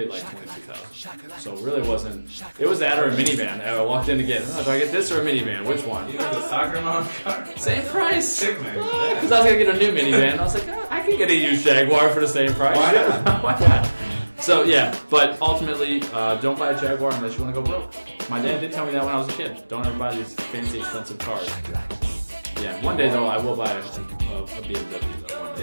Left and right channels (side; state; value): both; inverted; correlation -1.00